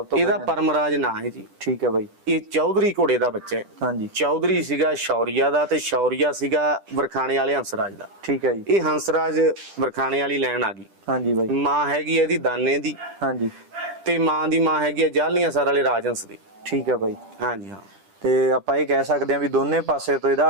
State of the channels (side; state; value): left; late; 10 ms